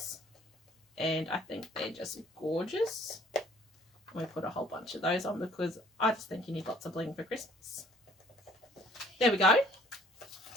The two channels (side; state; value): both; normal; correlation 0.57